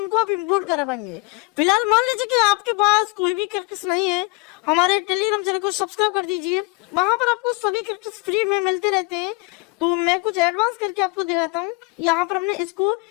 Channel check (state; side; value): quieter; right; 25.0 dB